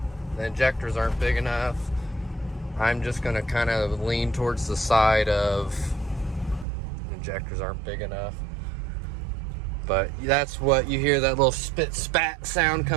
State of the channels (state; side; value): drops out; left; at 6.7 s